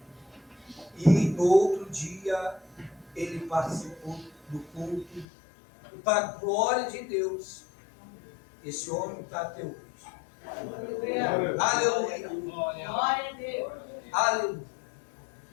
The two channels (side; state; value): right; drops out; at 5.2 s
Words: E no outro dia ele participou do culto. E para a glória de Deus, esse homem está até hoje. Aleluia. Glória a Deus. Aleluia.